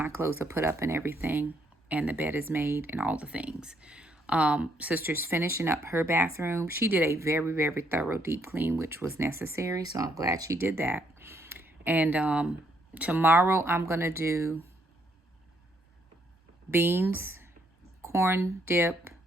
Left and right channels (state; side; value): normal; both; correlation 0.72